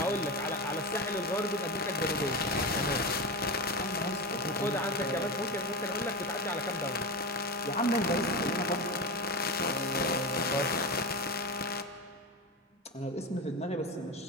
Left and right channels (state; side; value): normal; both; correlation 0.21